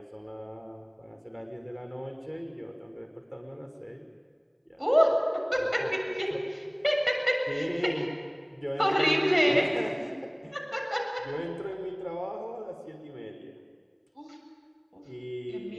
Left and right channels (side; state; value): both; identical; correlation 1.00